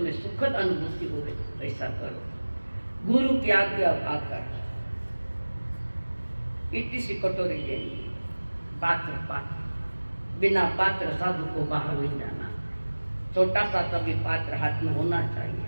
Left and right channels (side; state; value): both; inverted; correlation -1.00